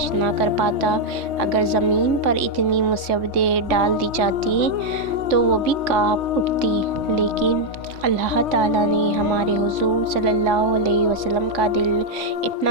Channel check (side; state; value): left; late; 3.5 ms